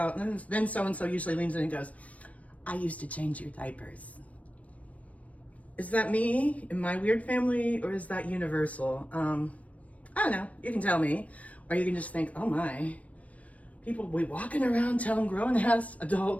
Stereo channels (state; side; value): late; right; 0.067 ms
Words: and then so-and-so usually leans in and goes, I used to change your diapers. Is that me in my weird family, or is that universal? I don't know, you can tell me. Or you can just think, oh my, people will be walking around telling grown-ass